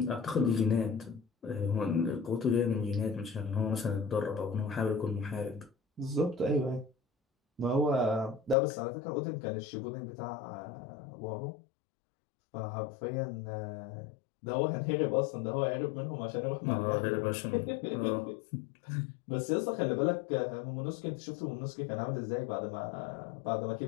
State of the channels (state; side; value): drops out; right; at 8.6 s